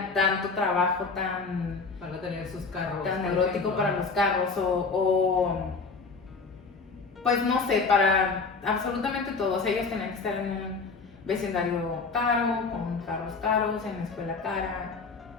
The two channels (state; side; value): quieter; right; 4.4 dB